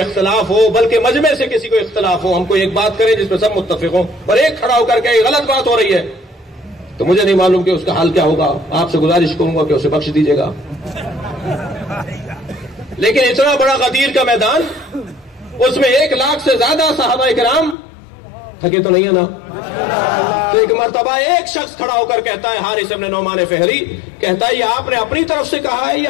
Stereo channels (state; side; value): drops out; right; at 17.8 s